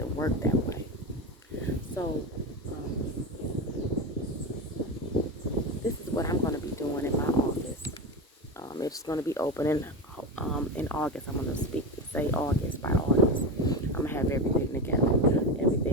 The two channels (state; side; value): normal; both; correlation 0.19